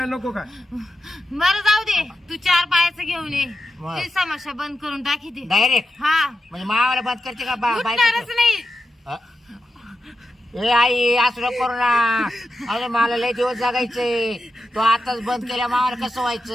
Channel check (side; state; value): both; normal; correlation 0.89